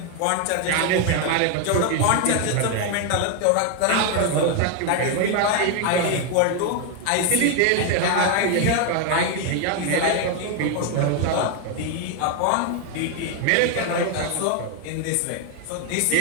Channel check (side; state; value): both; different; correlation 0.01